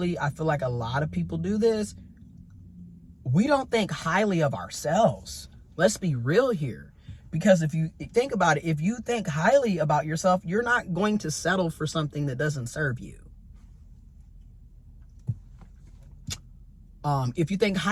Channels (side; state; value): both; identical; correlation 1.00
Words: I feel like a lot of people do this. We don't think highly of ourselves. Let's be real here. Because if you think about it, if you think highly about yourself, you're not going to settle for something that doesn't serve you. If you think